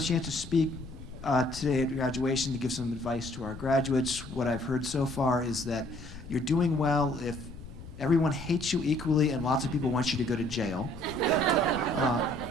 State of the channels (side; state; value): left; noise; rumble, 14 dB below the sound